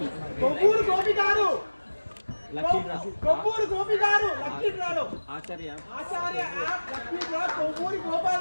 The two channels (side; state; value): both; inverted; correlation -1.00